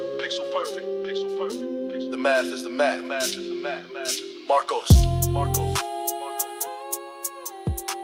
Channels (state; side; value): identical; both; correlation 1.00